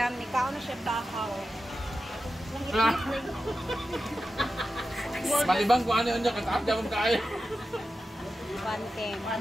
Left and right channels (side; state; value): both; normal; correlation 0.92